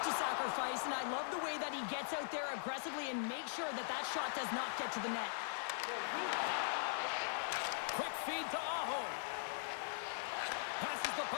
to sacrifice, and I love the way that he gets out there aggressively and makes sure that that shot does not get to the net. Quick feed to Aho. Passes the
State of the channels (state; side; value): silent; right; digital silence